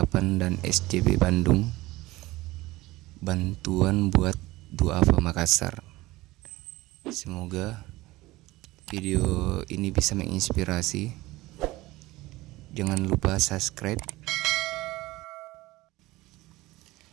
dan SJB Bandung, bantuan buat duafa Makassar. Semoga video ini bisa menginspirasi. Jangan lupa subscribe,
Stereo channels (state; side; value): quieter; left; 19.3 dB